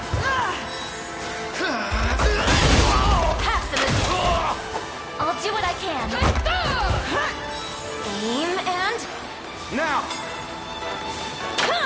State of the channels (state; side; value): identical; both; correlation 1.00